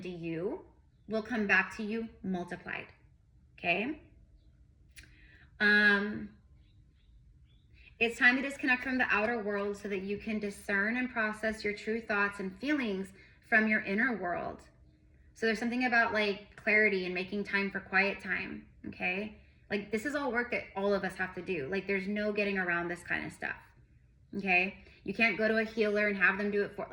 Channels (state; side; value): identical; both; correlation 1.00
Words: you will come back to you multiplied. Okay? It's time to disconnect from the outer world so that you can discern and process your true thoughts and feelings from your inner world. So there's something about like clarity and making time for quiet time, okay? Like this is all work that all of us have to do. Like there's no getting around this kind of stuff, okay? You can't go to a healer and have them do it for,